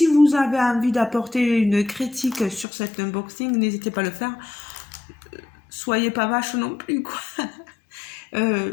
vous avez envie d'apporter une critique sur cet unboxing, n'hésitez pas à le faire. Soyez pas vache non plus, quoi.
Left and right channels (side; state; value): right; drops out; at 2.7 s